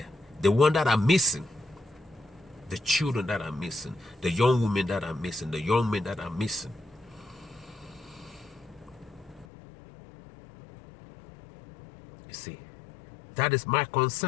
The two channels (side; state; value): right; drops out; at 9.5 s